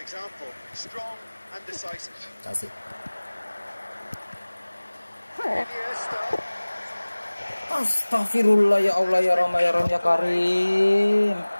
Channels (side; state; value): both; inverted; correlation -1.00